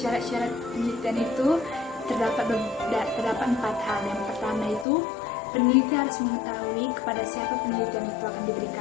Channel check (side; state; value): right; drops out; at 4.9 s